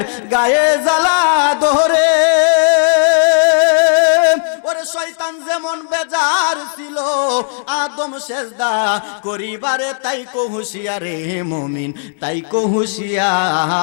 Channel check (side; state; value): right; silent; digital silence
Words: গায়ে জ্বালা ধরে, ওরে শয়তান যেমন বেজার ছিল আদম সেজদা করিবারে, তাই কো হুঁশিয়ারে মুমিন, তাই কো